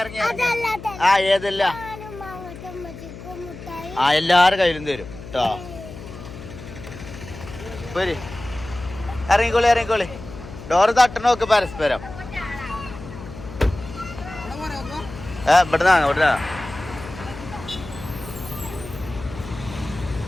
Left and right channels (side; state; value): left; noise; hum, 13 dB below the sound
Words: ഇറങ്ങി ആ ഏതല്ല ആ എല്ലാരും കയ്യിലും തരും കേട്ടോ. പോരി ഇറങ്ങിക്കോളി ഇറങ്ങിക്കോളി. ഡോറ് തട്ടണോക്ക് പരസ്പരം. ഇവിടുന്നാണ് ഇവിടെ